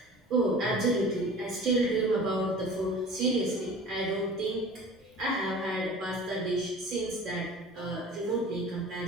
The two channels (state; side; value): normal; both; correlation 0.42